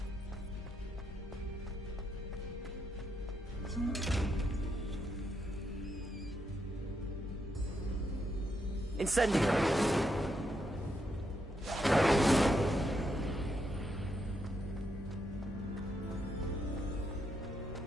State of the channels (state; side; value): normal; both; correlation 0.80